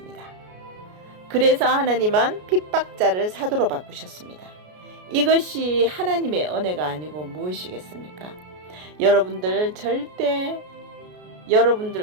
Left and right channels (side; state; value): left; late; 33 ms